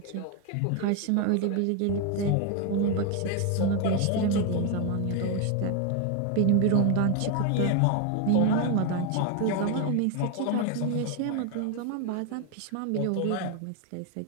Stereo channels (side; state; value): both; different; correlation 0.01